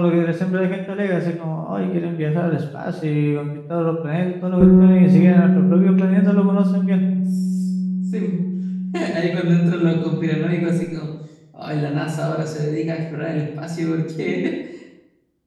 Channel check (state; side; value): identical; both; correlation 1.00